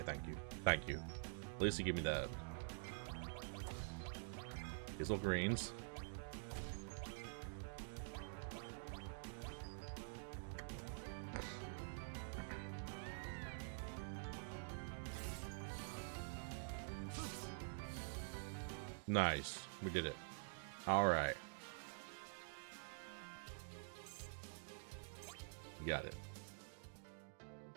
thank you. Thank you. At least you give me that. Hazel greens. Nice. We did it. Alright. Got it.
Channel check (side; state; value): left; silent; digital silence